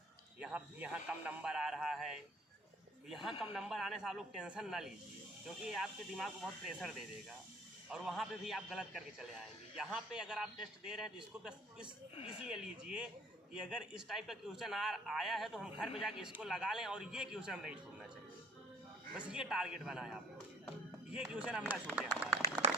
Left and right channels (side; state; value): both; normal; correlation 0.54